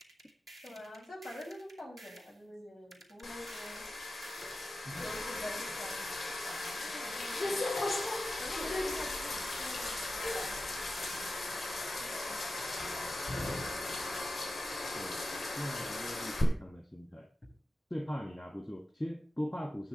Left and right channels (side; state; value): both; normal; correlation 0.93